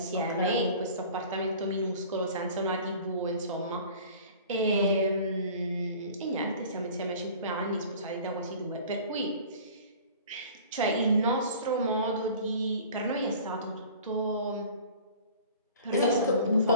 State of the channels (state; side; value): inverted; both; correlation -0.45